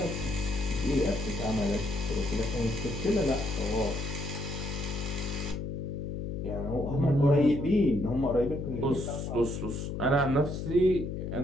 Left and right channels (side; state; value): left; noise; hum, 4 dB below the sound